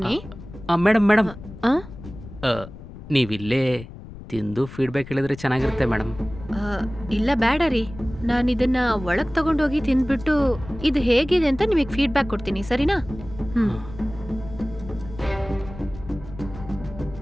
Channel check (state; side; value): noise; left; rumble, 15 dB below the sound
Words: ಮೇಡಮ್ ಆ? ನೀವಿಲ್ಲೇ ತಿಂದು ಫೀಡ್ಬ್ಯಾಕ್ ಹೇಳಿದ್ರೆ ಚೆನ್ನಾಗಿರುತ್ತೆ ಮೇಡಮ್. ಇಲ್ಲ ಬೇಡ ರೀ, ನಾನು ಇದನ್ನ ಒಳಗ್ ತಗೊಂಡೋಗಿ ತಿಂದ್ಬಿಟ್ಟು ಇದು ಹೇಗಿದೆ ಅಂತ ನಿಮಗೆ ಫೀಡ್ಬ್ಯಾಕ್ ಕೊಡ್ತೀನಿ, ಸರಿನಾ? ಹ್ಮ್.